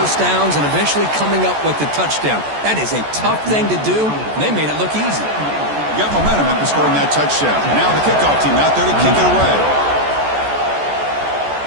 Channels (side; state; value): left; late; 14 ms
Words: downs, and eventually coming up with the touchdown. That is a tough thing to do, and they made it look easy. You got momentum after scoring that touchdown. Now the kickoff team out there to kick it away.